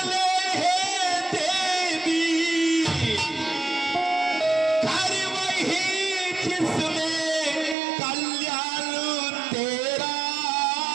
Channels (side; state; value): left; drops out; at 7.8 s